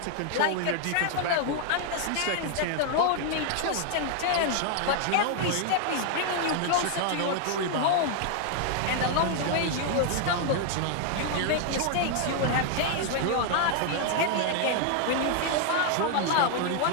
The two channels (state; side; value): different; both; correlation 0.00